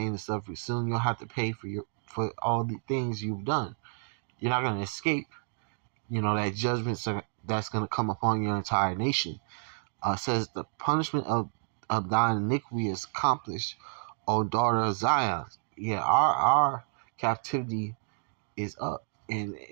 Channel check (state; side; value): silent; left; digital silence